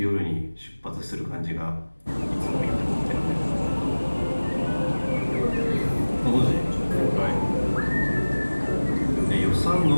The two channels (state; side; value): inverted; both; correlation -1.00